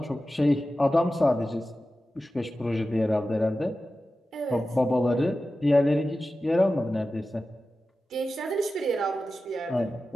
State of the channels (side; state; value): both; normal; correlation 0.94